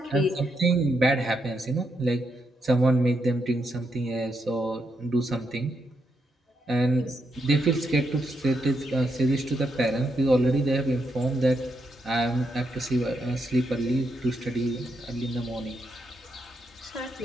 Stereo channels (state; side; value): normal; both; correlation 0.81